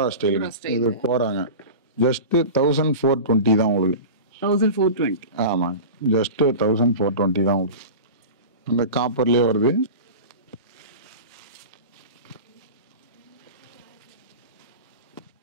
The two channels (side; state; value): both; inverted; correlation -0.32